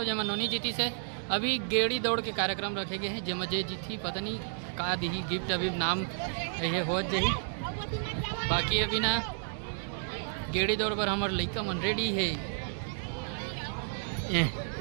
जब नोनी जीती से। अभी गेड़ी दौड़ के कार्यक्रम रखे गए हैं जब जे जीती पता नहीं का दी गिफ्ट अभी नाम ये हो जाही। बाकी अभी ना गेड़ी दौड़ पर हमारे लड़का मन रेडी है।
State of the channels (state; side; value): silent; left; digital silence